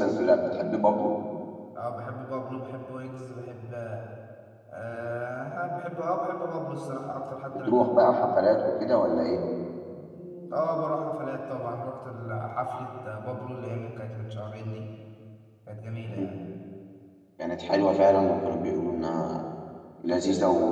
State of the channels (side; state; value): both; identical; correlation 1.00